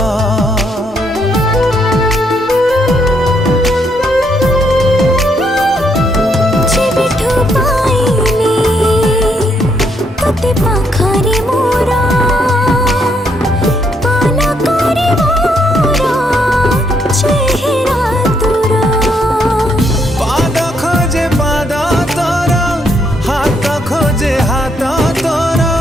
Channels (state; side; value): normal; both; correlation 0.74